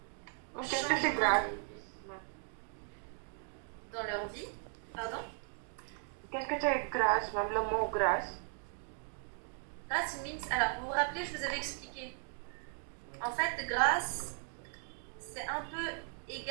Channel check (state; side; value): silent; left; 53 dB below the other